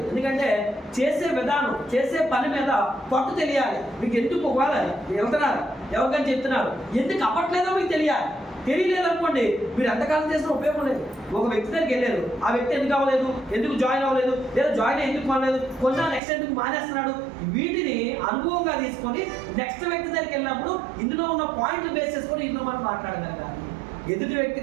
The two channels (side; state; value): left; drops out; at 16.2 s